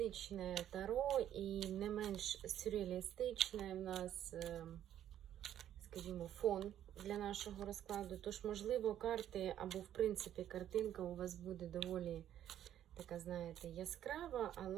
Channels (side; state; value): left; quieter; 11.0 dB